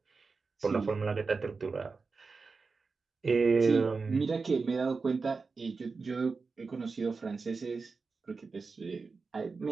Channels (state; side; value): quieter; left; 4.5 dB